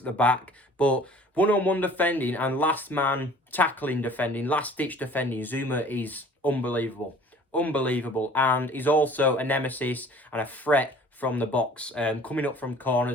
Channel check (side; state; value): both; normal; correlation 0.50